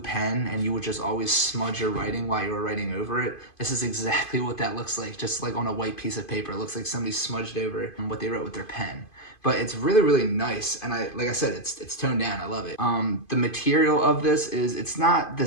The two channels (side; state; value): right; late; 2.5 ms